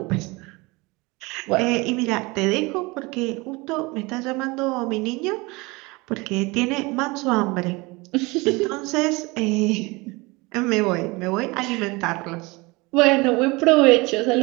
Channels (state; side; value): quieter; left; 24.6 dB